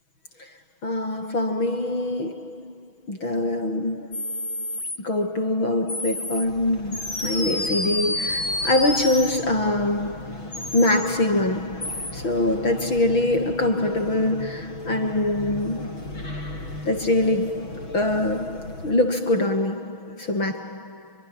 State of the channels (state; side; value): late; right; 6.2 ms